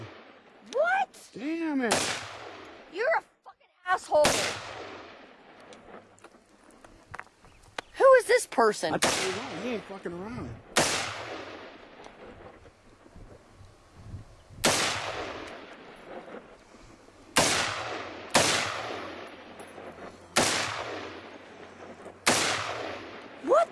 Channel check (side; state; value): both; identical; correlation 1.00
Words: What? Damn it. You're a fucking asshole. Who is this person? I tell you what, he ain't fucking around. What